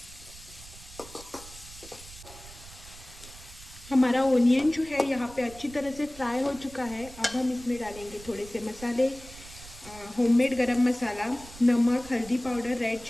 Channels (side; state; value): right; noise; rumble, 18 dB below the sound